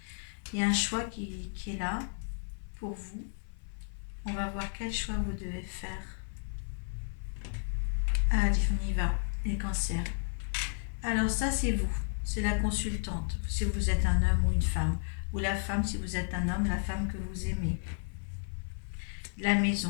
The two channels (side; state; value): right; silent; 56 dB below the other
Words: Il y a un choix qui est là pour vous. On va voir quel choix vous devez faire. Allez, on y va, les cancers. Alors, ça, c'est vous. C'est la consultante. Si vous êtes un homme ou une femme. Ou la femme, si vous êtes un homme, la femme que vous aimez. La